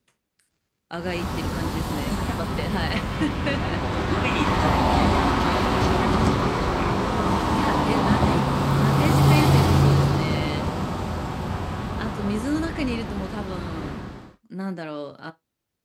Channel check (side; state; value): both; identical; correlation 1.00